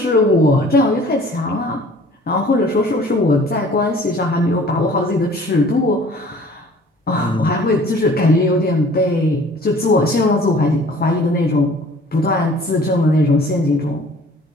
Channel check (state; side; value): normal; both; correlation 0.51